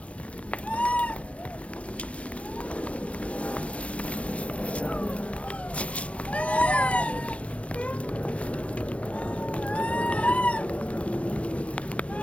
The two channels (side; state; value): right; late; 0.063 ms